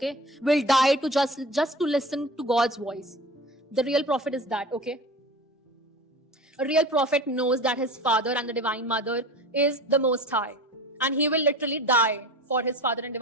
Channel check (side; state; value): both; normal; correlation 0.36